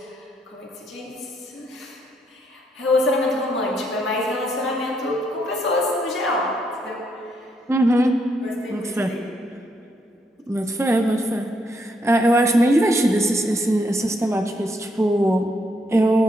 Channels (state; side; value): normal; both; correlation 0.75